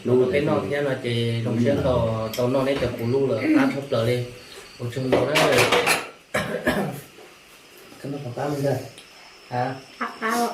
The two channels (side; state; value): both; identical; correlation 1.00